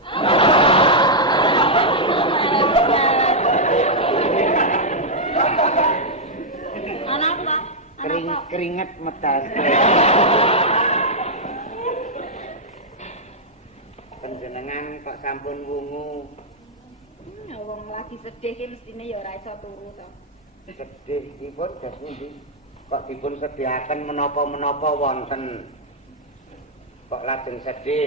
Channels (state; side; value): normal; both; correlation -0.05